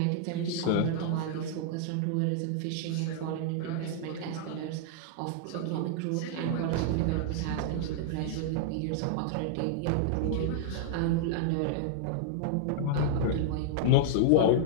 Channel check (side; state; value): both; different; correlation -0.01